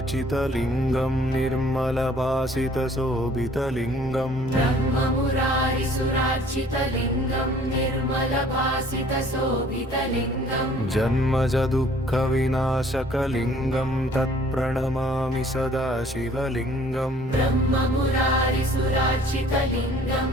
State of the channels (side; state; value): both; normal; correlation 0.55